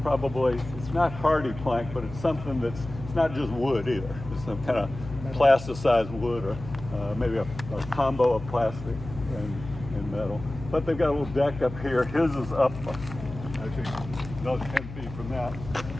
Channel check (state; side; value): noise; left; hum, 12 dB below the sound